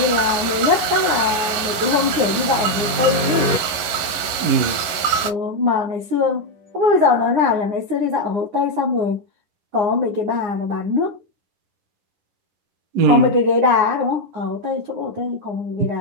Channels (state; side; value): late; left; 11 ms